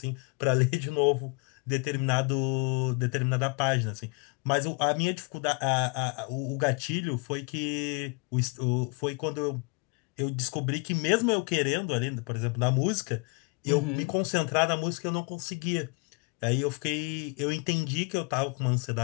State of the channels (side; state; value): right; quieter; 31.6 dB